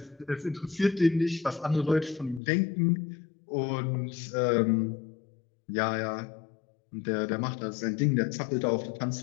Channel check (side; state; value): right; drops out; at 2.4 s